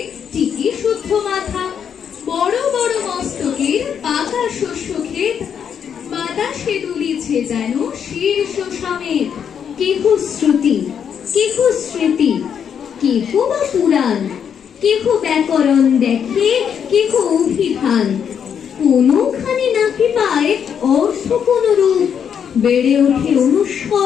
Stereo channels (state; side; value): quieter; right; 7.8 dB